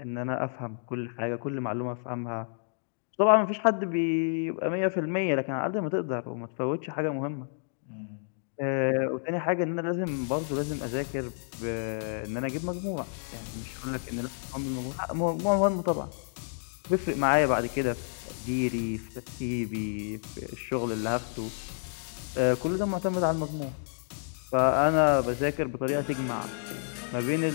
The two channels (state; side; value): silent; right; digital silence